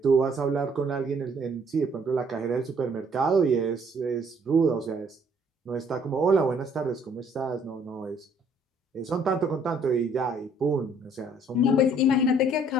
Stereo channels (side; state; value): both; normal; correlation 0.62